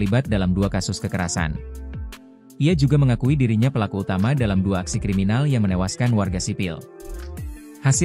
dalam 2 kasus kekerasan. Ia juga mengakui dirinya pelaku utama dalam 2 aksi kriminal yang menewaskan warga sipil.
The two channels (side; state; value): both; identical; correlation 1.00